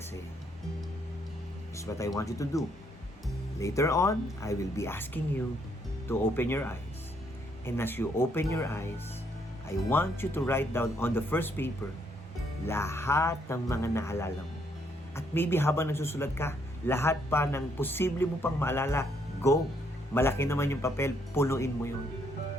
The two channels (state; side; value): normal; both; correlation 0.71